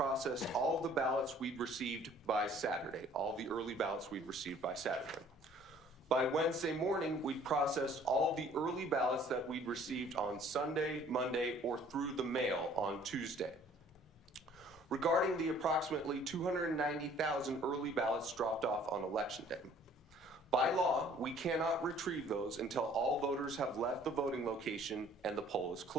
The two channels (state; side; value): normal; both; correlation 0.55